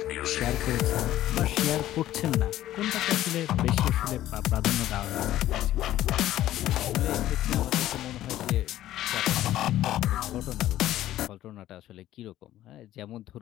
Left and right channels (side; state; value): right; quieter; 13.7 dB